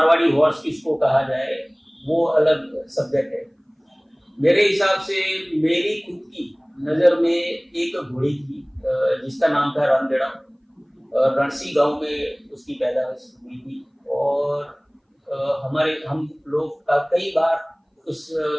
हॉर्स किसको कहा जाए वो अलग सब्जेक्ट है। मेरे हिसाब से मेरी खुद की नजर में एक घोड़ी थी जिसका नाम था रणदेड़ा। रणसी गांव में उसकी पैदाइश हुई थी और हम लोग कई बार उस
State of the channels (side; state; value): both; identical; correlation 1.00